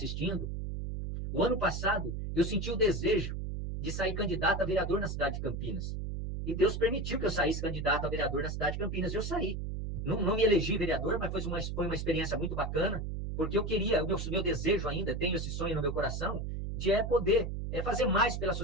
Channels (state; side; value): noise; right; hum, 4 dB below the sound